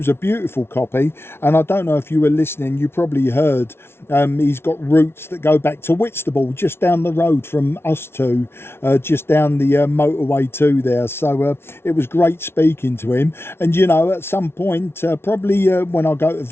a beautiful copy. And I don't know if you were listening, you probably heard he's got roots that go back to Whitstable, just down the road from us two, just down the motorway 2 there. So it was great speaking to him. And you know, at some point, probably when I go to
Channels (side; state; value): right; late; 0.12 ms